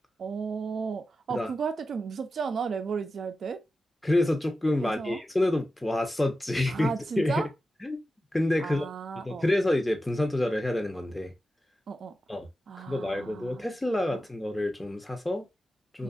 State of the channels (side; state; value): both; normal; correlation 0.92